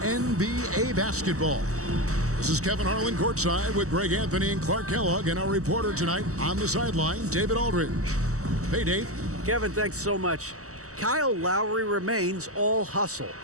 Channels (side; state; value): left; late; 0.65 ms